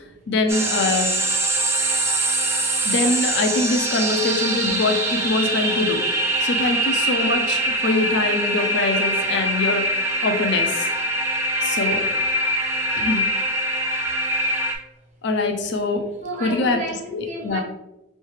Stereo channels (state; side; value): normal; both; correlation 0.08